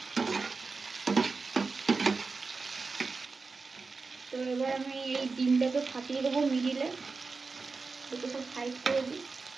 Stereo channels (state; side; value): quieter; left; 4.3 dB